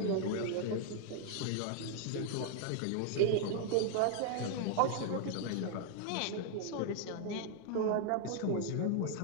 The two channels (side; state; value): both; different; correlation 0.00